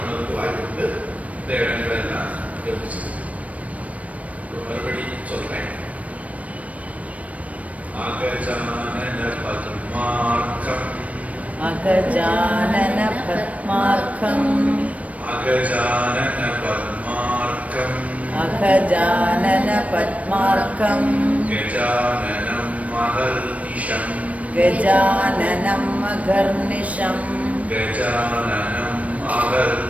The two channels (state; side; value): late; left; 0.067 ms